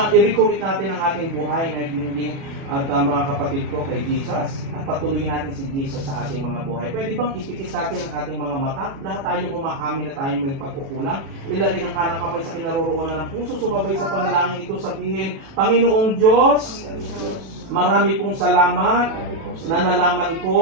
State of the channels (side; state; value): left; late; 36 ms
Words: i-recommit natin ang ating buhay na hinging at mga kapatid ko kay Jesus at patuloyin natin si Jesus sa ating mga buhay. Pwede bang ipikit natin ang ating mga mata? Lahat tayo umaamin na tayo may pagkukulang. Ilagay ang kanang kamay sa kinaroroonan ng puso. Sumabay sa panalangin ito, sabihin, Panginoong Diyos, marami pong salamat na nalaman